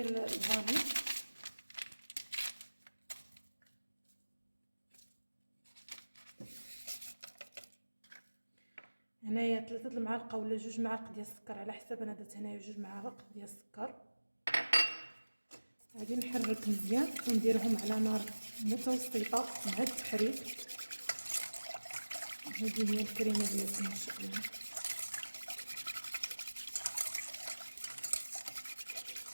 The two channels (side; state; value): both; inverted; correlation -1.00